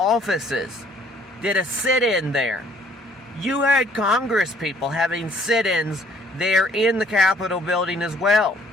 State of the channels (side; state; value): both; normal; correlation 0.61